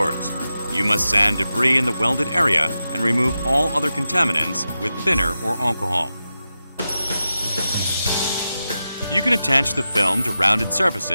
you must sand debris in the welded area and remove all other contaminants with thinner or alcohol. You can attach the film to rounded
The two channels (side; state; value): both; inverted; correlation -0.91